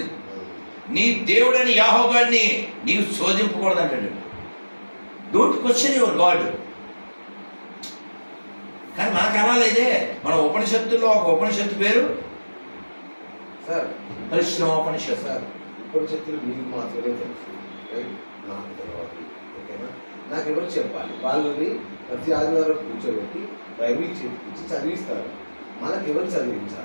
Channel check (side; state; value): both; inverted; correlation -1.00